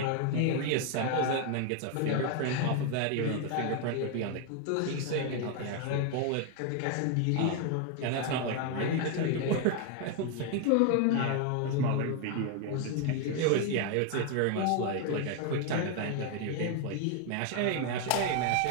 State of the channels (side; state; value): both; different; correlation 0.01